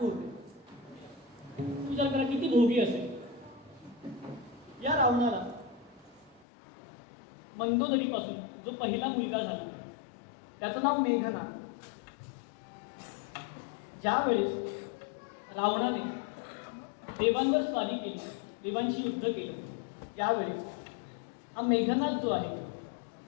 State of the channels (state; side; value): drops out; right; at 6.5 s